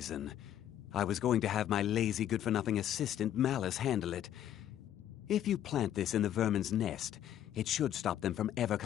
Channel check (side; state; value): right; quieter; 11.1 dB